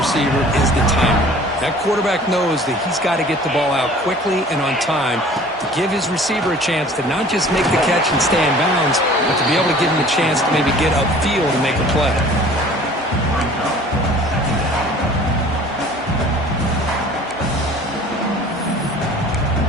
is the timing. That quarterback knows that he's got to get the ball out quickly and on time to give his receiver a chance to not just make the catch and stay in bounds, but to be able to give him a chance to maybe get upfield and make a play.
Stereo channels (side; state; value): both; normal; correlation 0.48